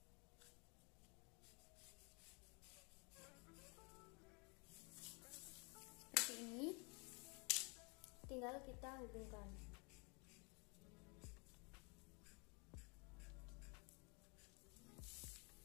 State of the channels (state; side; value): quieter; right; 32.0 dB